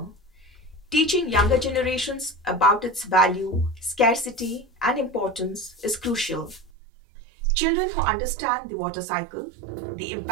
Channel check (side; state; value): left; drops out; at 6.7 s